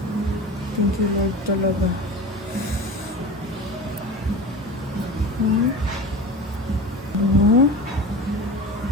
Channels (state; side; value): normal; both; correlation 0.32